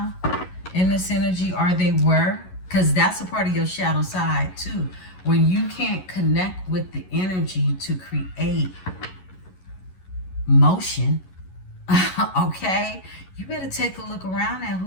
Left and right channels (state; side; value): late; right; 11 ms